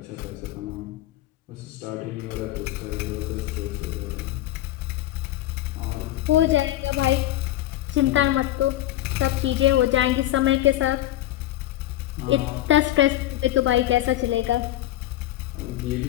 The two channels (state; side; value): quieter; right; 14.7 dB